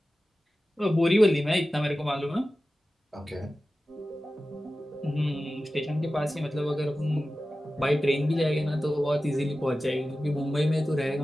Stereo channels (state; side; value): normal; both; correlation 0.95